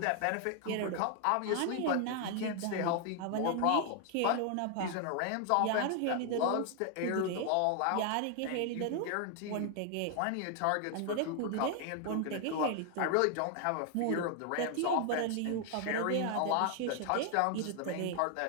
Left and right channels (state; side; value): different; both; correlation 0.00